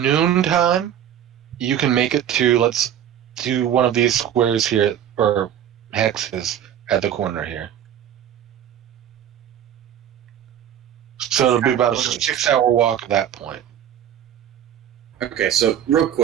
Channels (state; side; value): quieter; left; 10.1 dB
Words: you can make it to, let's do one of these squares here, or hexes at the corner here. So it'll be about a 6-hour walk at that point. Okay, so real